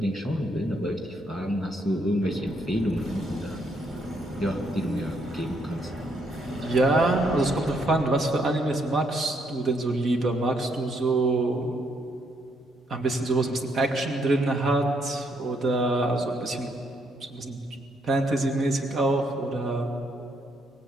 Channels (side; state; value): both; normal; correlation 0.73